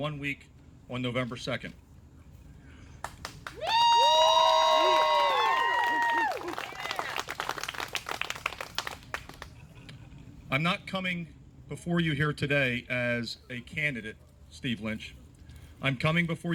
week on November 2nd. I'm not coming before you here today as a candidate, Steve Lynch. I'm coming before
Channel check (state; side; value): identical; both; correlation 1.00